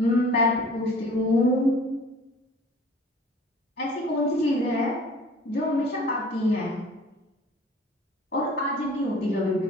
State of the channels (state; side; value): normal; both; correlation 0.47